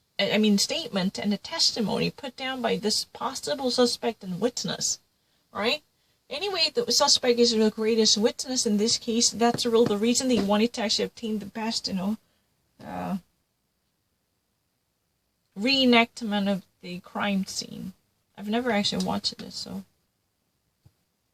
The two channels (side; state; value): both; identical; correlation 1.00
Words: and the testimony put down by this possible suspect and witness, right? Anyway, the suspect is the greatest witness in this case. That's the reason they wanted to actually obtain the best, reenactment of the crime scene. I've never actually watched this, so.